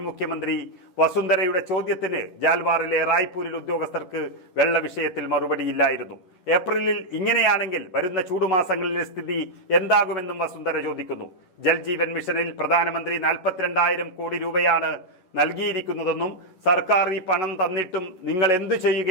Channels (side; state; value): right; late; 11 ms